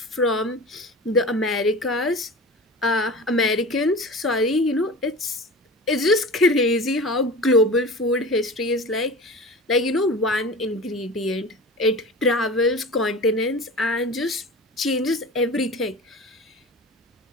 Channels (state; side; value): normal; both; correlation 0.33